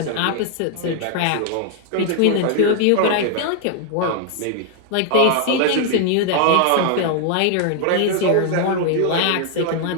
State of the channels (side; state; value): both; different; correlation 0.00